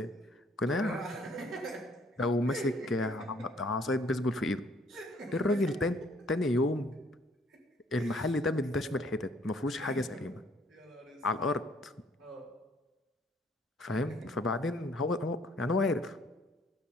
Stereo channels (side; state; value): both; normal; correlation 0.62